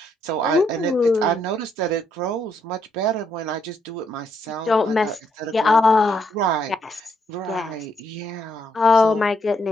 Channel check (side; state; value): both; normal; correlation 0.74